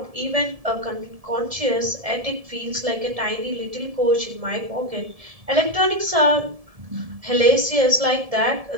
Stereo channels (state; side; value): late; left; 1.7 ms